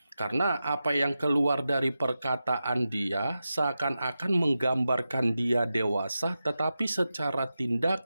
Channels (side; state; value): both; inverted; correlation -0.91